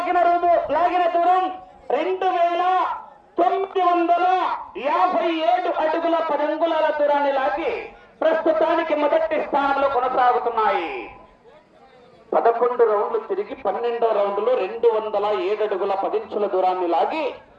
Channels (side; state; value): both; identical; correlation 1.00